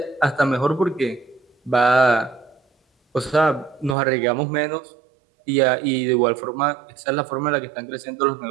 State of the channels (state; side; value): drops out; left; at 4.0 s